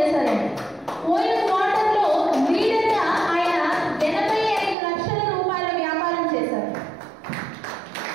పోయిన క్వార్టర్ లో లీడర్ గా ఆయన 85 లక్షల రూపాయల వ్యాపారం చేశారు.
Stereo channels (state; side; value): drops out; left; at 4.8 s